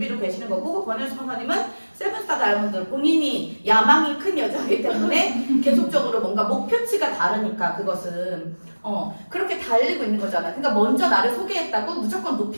계시는 거고, 권혜진 스폰서님은 세븐스타 다이아몬드 본인이 야망이 큰 여자이기 때문에 계속적으로 뭔가 목표치가 다르니까 그것은 그렇게 달리고 있는 거잖아. 그러니까 먼저 나를 소개했다고 무조건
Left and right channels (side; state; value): both; inverted; correlation -1.00